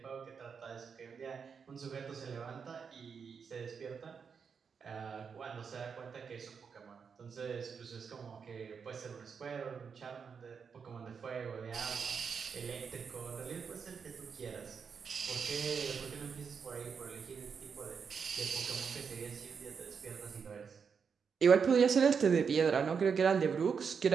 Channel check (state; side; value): quieter; left; 6.2 dB